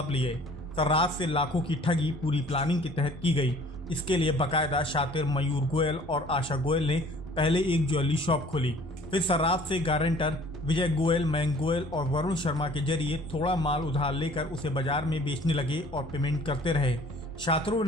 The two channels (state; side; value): normal; both; correlation 0.52